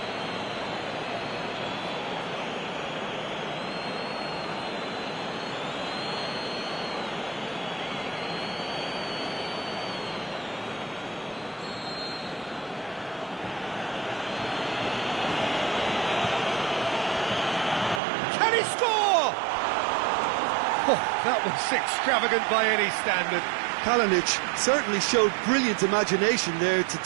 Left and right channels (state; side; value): drops out; left; at 18.0 s